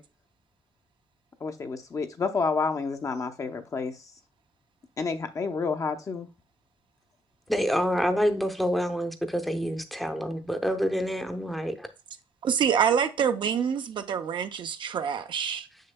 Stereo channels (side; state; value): both; normal; correlation 0.65